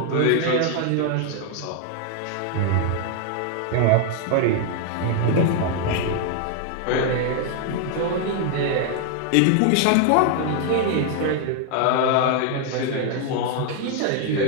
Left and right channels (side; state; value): both; different; correlation 0.00